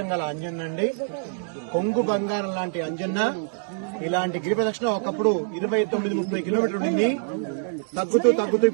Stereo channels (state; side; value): silent; left; 62 dB below the other